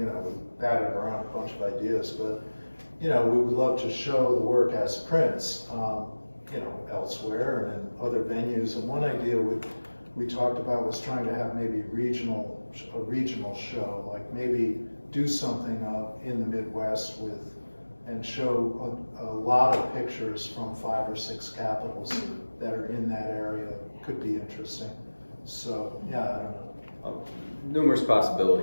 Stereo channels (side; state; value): both; inverted; correlation -1.00